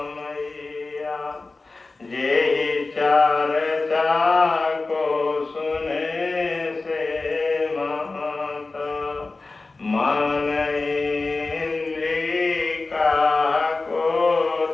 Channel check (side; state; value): right; quieter; 3.5 dB